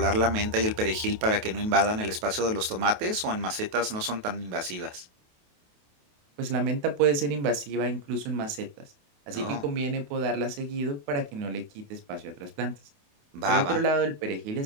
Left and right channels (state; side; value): late; left; 28 ms